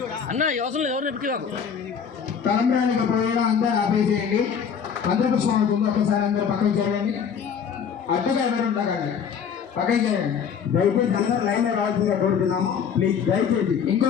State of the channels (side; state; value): right; quieter; 7.1 dB